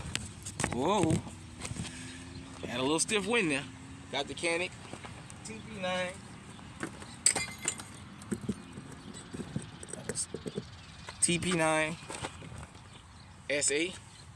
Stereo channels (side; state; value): both; identical; correlation 1.00